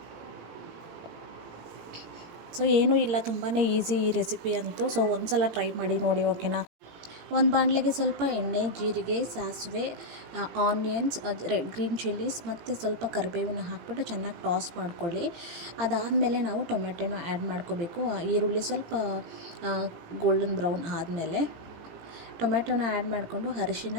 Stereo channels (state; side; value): late; left; 17 ms